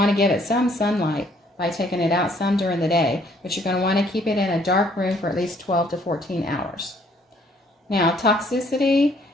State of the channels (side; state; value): both; normal; correlation 0.64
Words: to give it some sunlight by taking it out some during the day, but you're going to want to keep it in a dark room for at least 12 to 14 hours. Now, toxicity.